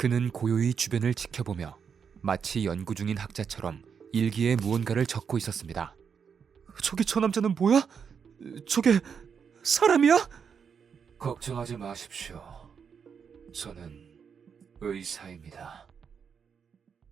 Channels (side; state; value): left; quieter; 6.7 dB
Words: 고요히 주변을 지켜보며 마치 연구 중인 학자처럼 일기에 무언가를 적고 있었습니다. 저기 저 남자는 뭐야? 저게 사람이야? 걱정하지 마십시오. 저는 의사입니다.